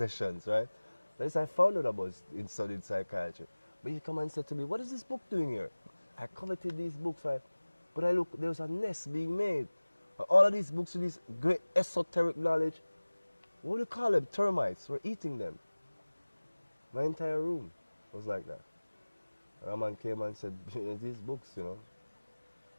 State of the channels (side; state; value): both; inverted; correlation -1.00